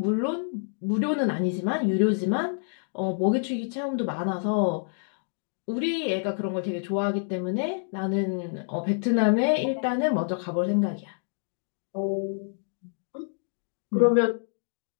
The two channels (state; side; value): silent; right; digital silence